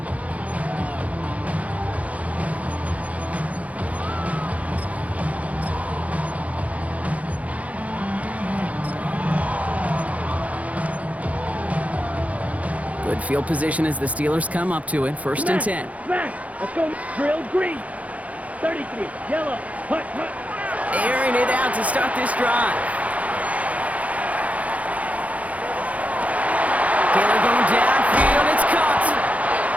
Good field position as the Steelers come up to it, 1st and 10. Smash. Let's go. Drill green. 33. Yellow. Hut. Airing it out to start this drive. Taylor going downfield, it's caught.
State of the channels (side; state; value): left; late; 0.068 ms